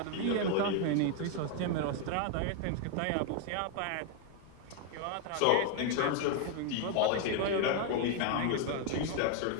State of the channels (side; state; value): both; different; correlation 0.00